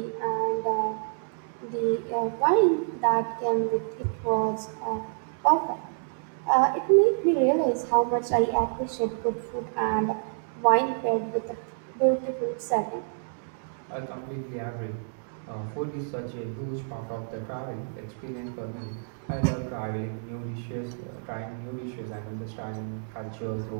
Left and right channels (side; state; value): left; silent; digital silence